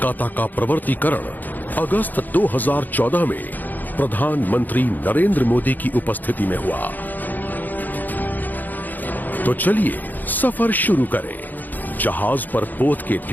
का प्रवर्तीकरण अगस्त 2014 में प्रधानमंत्री नरेंद्र मोदी की उपस्थिति में हुआ। तो चलिए सफर शुरू करें। जहाज पर पोत के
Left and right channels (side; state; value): right; late; 0.085 ms